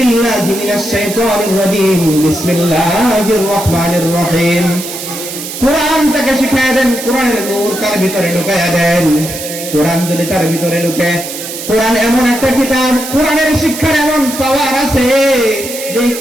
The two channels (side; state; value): right; noise; hiss, 8 dB below the sound